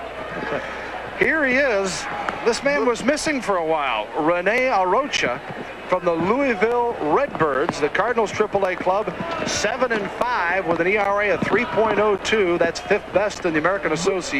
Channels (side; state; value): both; identical; correlation 1.00